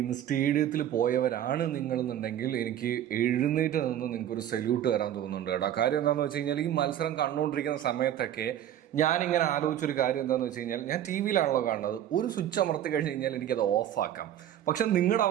ഇന്ന് സ്റ്റേഡിയത്തിൽ പോയവരാണ് നിങ്ങളെന്നുണ്ടെങ്കിൽ എനിക്ക് എഴുന്നേറ്റ് നിന്ന് നിങ്ങൾക്കൊരു സല്യൂട്ട് തരാൻ തോന്നുന്നുണ്ട് കേട്ടോ. കാര്യം എന്താണെന്ന് വെച്ച് കഴിഞ്ഞാൽ ഈ മത്സരം കണ്ടുകൊണ്ടിരിക്കുന്ന സമയത്തൊക്കെ ഞാനിങ്ങനെ ആലോചിച്ചൊരു കാര്യം എന്താണെന്ന് വെച്ച് കഴിഞ്ഞാൽ ഞാൻ ടി വിയിലാണല്ലോ കാണുന്നത്. ഒരു സ്വിച്ച് അമർത്തി കഴിഞ്ഞ് കഴിഞ്ഞാൽ എനിക്കത് ഓഫാക്കാം. പക്ഷെ നിങ്ങളുടെ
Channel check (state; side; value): quieter; left; 11.2 dB